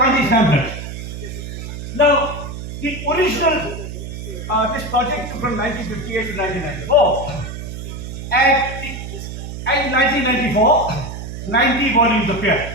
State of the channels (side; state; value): right; noise; hum, 8 dB below the sound